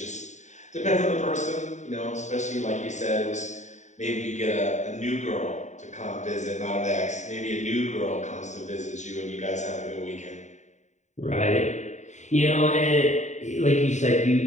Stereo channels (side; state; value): right; late; 0.34 ms